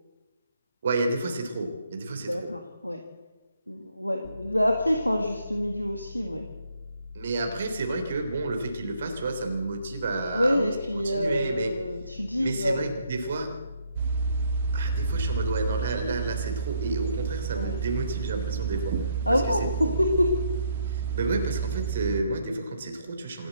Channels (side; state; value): both; inverted; correlation -0.71